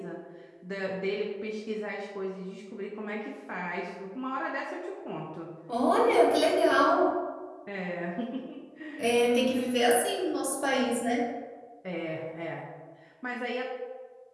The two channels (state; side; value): identical; both; correlation 1.00